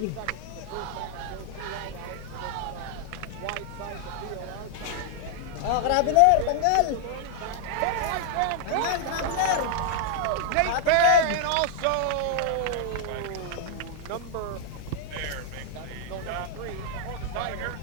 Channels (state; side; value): different; both; correlation 0.00